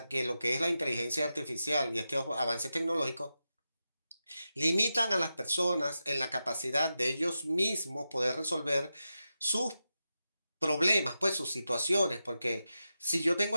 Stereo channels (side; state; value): both; inverted; correlation -0.90